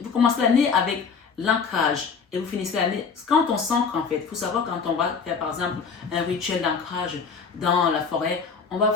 Vous commencez l'année avec l'ancrage. Et vous finissez l'année. Quand on s'ancre, en fait, il faut savoir quand on va faire, par exemple, un rituel d'ancrage dans la forêt, on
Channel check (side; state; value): right; quieter; 5.5 dB